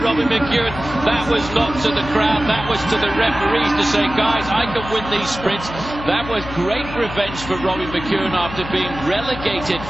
McEwen. That was not to the crowd. That was to the referees to say, guys, I can win these sprints. That was great revenge for Robbie McEwen after being relegated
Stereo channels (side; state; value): left; noise; hum, 11 dB below the sound